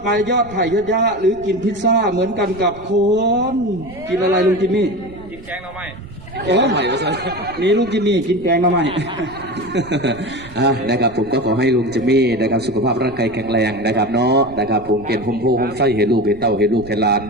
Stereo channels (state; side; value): noise; right; rumble, 19 dB below the sound